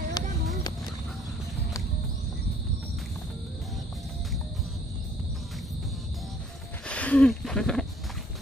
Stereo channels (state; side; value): normal; both; correlation 0.61